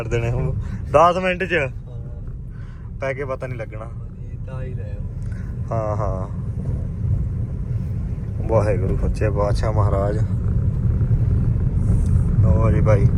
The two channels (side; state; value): both; identical; correlation 1.00